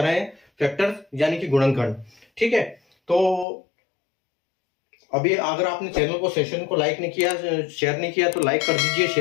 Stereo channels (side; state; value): right; drops out; at 3.5 s